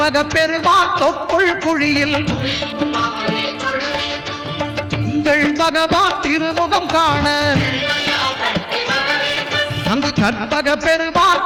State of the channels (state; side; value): identical; both; correlation 1.00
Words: பெருமான் தொப்புள் குழியில் திங்கள் பகவான் திருமுகம் காண அங்கு கற்பக பெருமான்